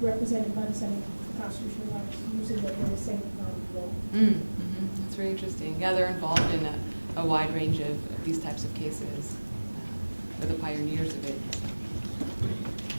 represented by the Center for Constitutional Rights using the very same law. That's very interesting. Yeah, they're involved in a wide range of these types of cases. They're the pioneers of it.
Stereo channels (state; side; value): inverted; both; correlation -1.00